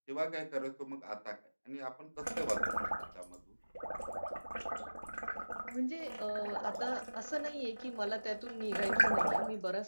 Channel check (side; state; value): both; inverted; correlation -1.00